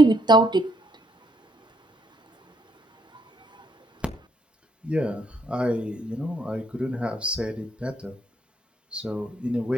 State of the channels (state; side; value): normal; both; correlation 0.72